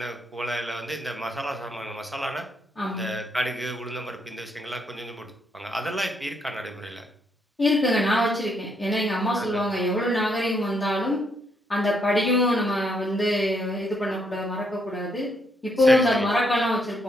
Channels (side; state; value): both; normal; correlation 0.74